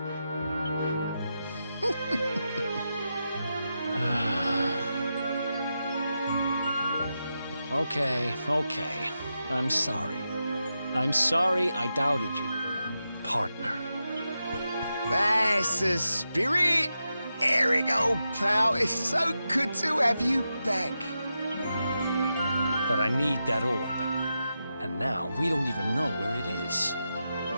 Okay. I'm sorry. I'm sorry I doubted you, partner. That's the spirit! Erik, old pal, it's so good to have you back. But I need that orb. And now we don't even know where it is.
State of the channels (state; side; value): inverted; both; correlation -0.88